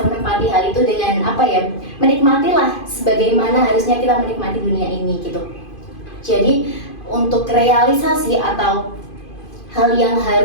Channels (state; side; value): late; right; 2.5 ms